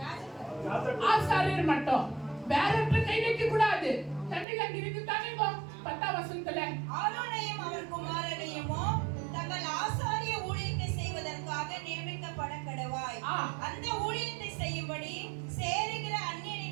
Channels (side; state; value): left; drops out; at 4.5 s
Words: ஆசாரியர் மட்டும். வேறற்ற கை வைக்க கூடாது. தமிழ்ல இருக்கு தானேங்க 10 வசனத்துல ஆரோனையும் அவன் குமாரனையும் தங்கள் ஆசாரிய ஊழியத்தை செய்வதற்காக நியமிக்கப்பட கடவாய். அந்த ஊழியத்தை செய்யும்படி சேருகிற